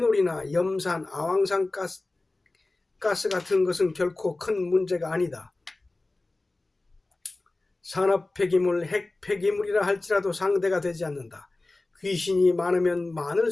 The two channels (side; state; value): right; quieter; 3.0 dB